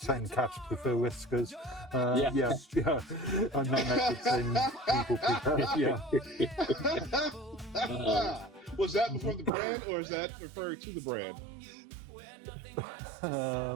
cats prefer whiskers. Yeah. And 9 out of 10 people prefer, Was that before the brand, or is that referring to the brand?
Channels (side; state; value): left; drops out; at 9.5 s